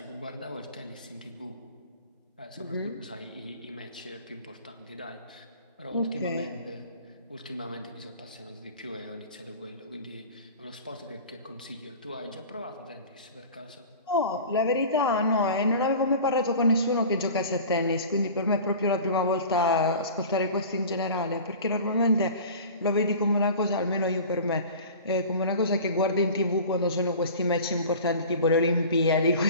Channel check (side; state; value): both; inverted; correlation -0.39